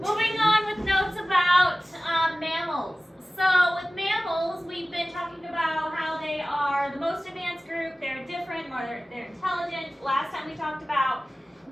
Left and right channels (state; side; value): normal; both; correlation 0.97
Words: on with notes about mammals. So with mammals, we've been talking about how they are the most advanced group. They're different, more they're intelligent. Last time we talked about